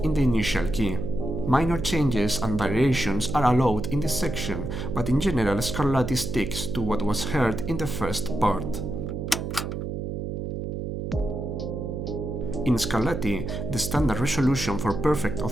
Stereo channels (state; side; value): noise; right; hum, 4 dB below the sound